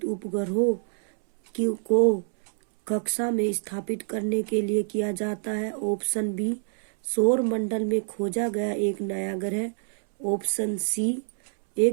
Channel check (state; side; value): silent; left; 61 dB below the other